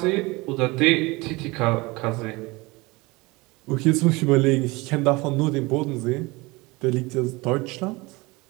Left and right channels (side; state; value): left; quieter; 23.7 dB